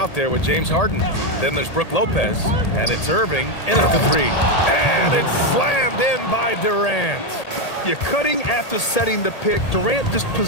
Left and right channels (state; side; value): late; right; 1.8 ms